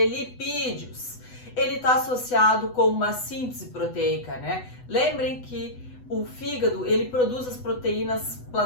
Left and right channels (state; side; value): late; right; 8.0 ms